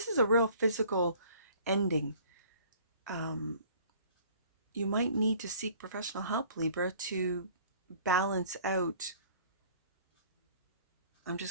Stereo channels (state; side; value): inverted; both; correlation -0.53